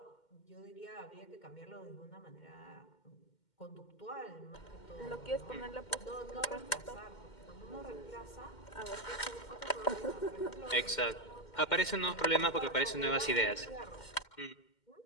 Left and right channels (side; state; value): right; late; 2.1 ms